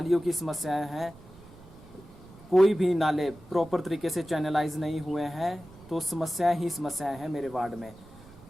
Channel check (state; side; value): noise; right; rumble, 21 dB below the sound